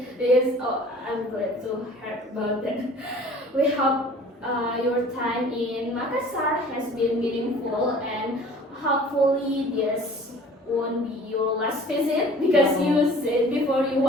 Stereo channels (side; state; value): both; normal; correlation 0.48